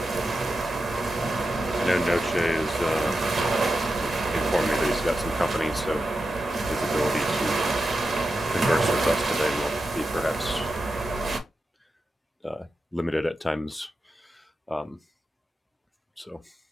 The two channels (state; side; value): normal; both; correlation 0.90